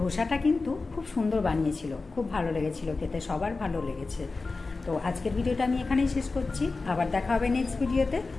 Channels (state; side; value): quieter; right; 3.8 dB